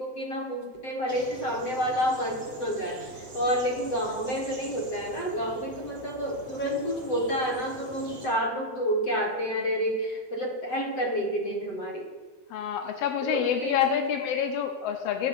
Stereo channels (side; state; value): right; late; 7.8 ms